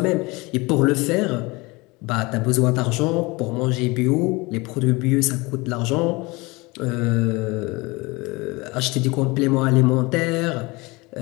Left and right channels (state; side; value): quieter; right; 24.3 dB